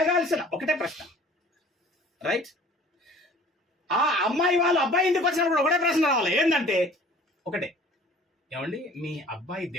ఒకటే ప్రశ్న, రైట్? ఆ అమ్మాయి వాళ్ళు అబ్బాయి ఇంటికి వచ్చినప్పుడు ఒకటే ప్రశ్న రావాలి, ఏంటంటే ఒకటే, ఏమండి మీ అబ్బాయి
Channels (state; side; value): normal; both; correlation 0.49